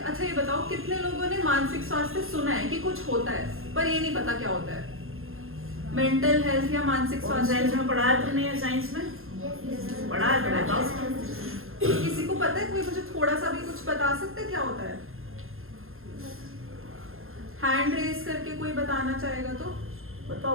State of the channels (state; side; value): late; left; 0.61 ms